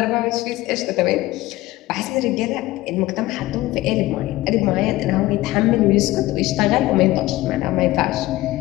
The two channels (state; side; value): quieter; right; 17.8 dB